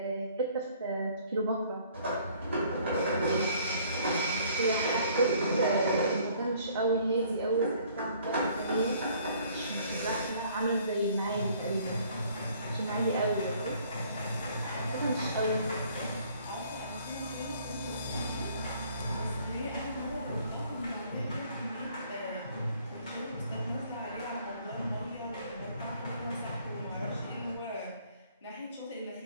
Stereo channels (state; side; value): inverted; both; correlation -0.59